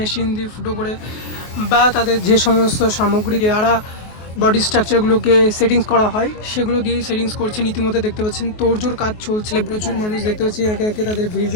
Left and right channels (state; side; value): late; right; 24 ms